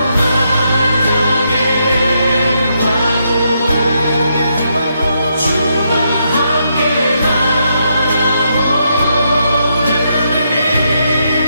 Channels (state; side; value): inverted; both; correlation -0.79